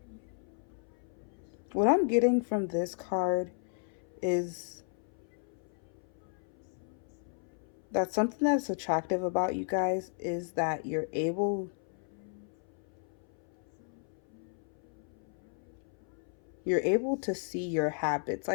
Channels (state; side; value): silent; right; 55 dB below the other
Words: What I'm getting from this card is that something that's attractive about you guys is that you're able to see your habits.